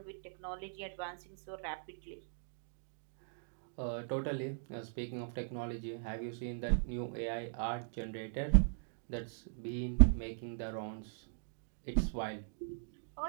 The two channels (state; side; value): silent; left; digital silence